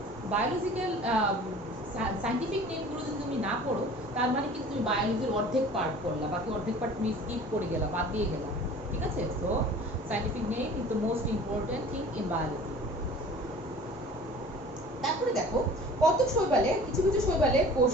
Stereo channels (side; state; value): both; normal; correlation 0.45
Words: বায়োলজিক্যাল সাইন্টিফিক নেমগুলো যদি তুমি না পড়ো, তার মানে কিন্তু তুমি বায়োলজির অর্ধেক পার্ট পড়লা, বাকি অর্ধেক পার্ট তুমি স্কিপ করে গেলা, বাদ দিয়ে গেলা, ঠিক আছে। So scientific name is the most important thing in biology. তারপরে দেখো, কত শৈবালে, কিছু কিছু শৈবালে